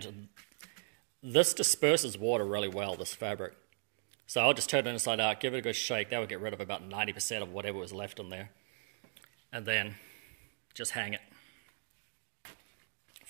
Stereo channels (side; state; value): left; silent; 53 dB below the other